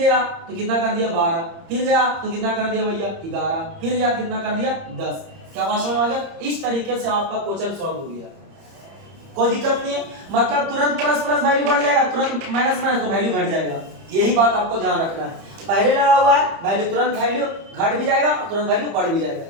तो कितना कर दिया? 12। फिर गया तो कितना कर दिया भैया? 11। फिर गया कितना कर दिया? 10। क्या बात समझ में आ गया? इस तरीके से आपका क्वेश्चन सॉल्व हो गया। कोई दिक्कत नहीं है, मतलब तुरंत प्लस प्लस वैल्यू बढ़ जाएगा, तुरंत माइनस माइनस तो वैल्यू घट जाएगा। यही बात आपको ध्यान रखना है। पहले लगा हुआ है वैल्यू, तुरंत वैल्यू घट भी जाएगा और तुरंत वैल्यू बढ़ भी जाएगा।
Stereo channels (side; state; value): left; late; 30 ms